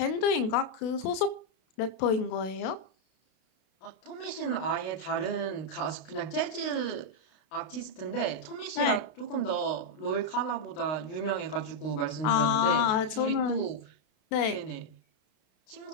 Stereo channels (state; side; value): late; right; 32 ms